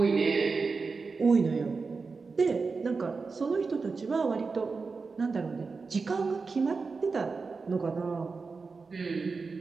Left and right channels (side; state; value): left; quieter; 4.5 dB